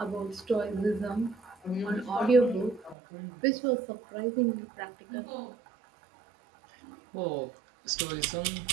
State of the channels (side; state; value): left; drops out; at 3.0 s